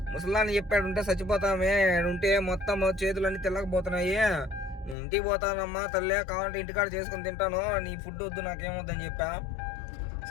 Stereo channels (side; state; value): right; drops out; at 5.0 s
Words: ముసలాన్ని చెప్పాడు ఉంటే చచ్చిపోతామే, ఉంటే మొత్తం చేతులన్నీ తెల్లకపోతున్నాయి, ఇంటికి పోతానమ్మా తల్లే, కావాలంటే ఇంటికాడ చేసుకుని తింటాను, నీ ఫుడ్ వద్దు నాకేమొద్దని చెప్పా.